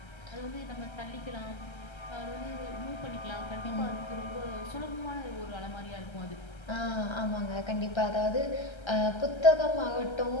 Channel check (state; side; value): late; right; 1.3 ms